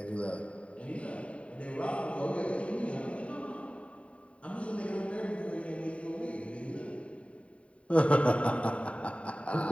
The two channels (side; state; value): right; late; 0.063 ms